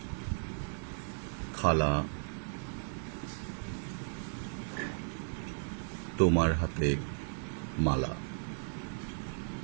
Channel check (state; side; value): silent; left; 54 dB below the other